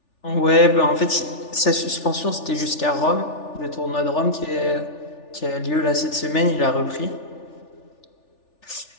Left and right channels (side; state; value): right; late; 3.4 ms